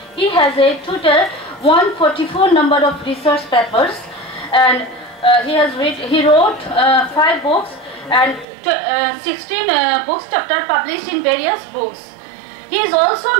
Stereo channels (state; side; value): drops out; left; at 8.5 s